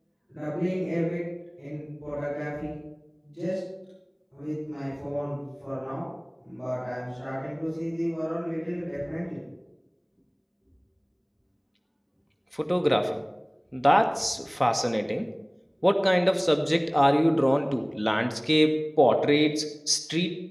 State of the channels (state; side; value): identical; both; correlation 1.00